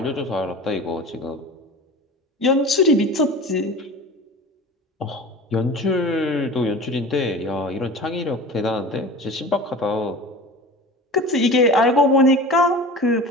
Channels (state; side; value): normal; both; correlation 0.35